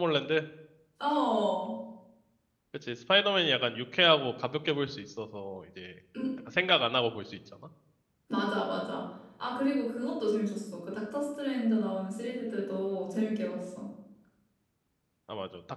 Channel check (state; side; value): identical; both; correlation 1.00